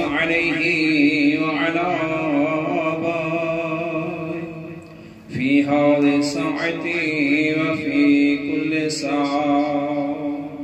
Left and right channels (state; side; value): identical; both; correlation 1.00